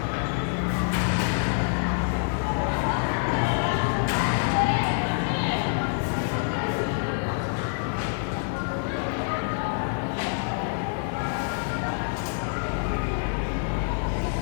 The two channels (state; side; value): silent; right; digital silence